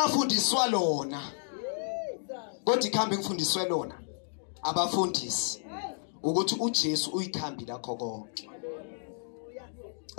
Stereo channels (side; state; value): right; silent; digital silence